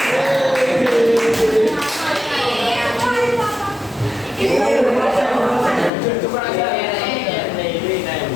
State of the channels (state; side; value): drops out; right; at 5.9 s